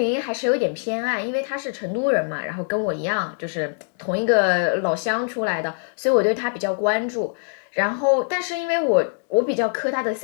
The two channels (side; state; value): right; silent; digital silence